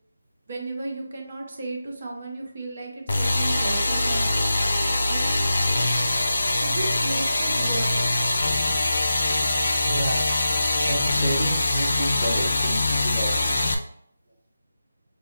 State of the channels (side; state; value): both; inverted; correlation -0.91